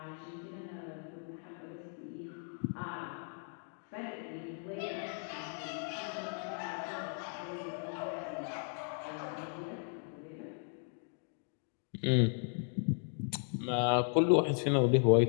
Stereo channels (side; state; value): right; silent; 54 dB below the other